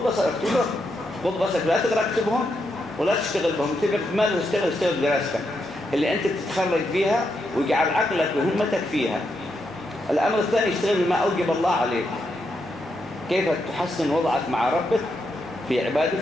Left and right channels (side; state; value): both; normal; correlation 0.82